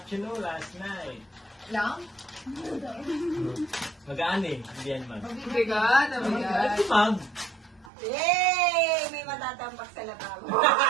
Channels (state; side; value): drops out; left; at 7.9 s